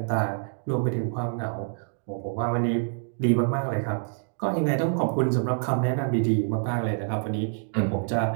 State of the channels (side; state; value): left; silent; 60 dB below the other